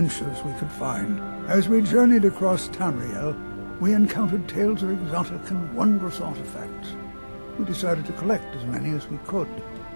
we could find. As we journeyed across Tamriel, we encountered tales of exotic and wondrous artifacts. We decided to collect as many as we could.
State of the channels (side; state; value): both; inverted; correlation -1.00